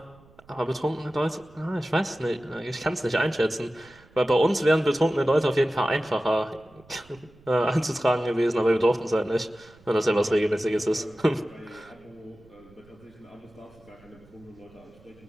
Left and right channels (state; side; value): noise; right; rumble, 27 dB below the sound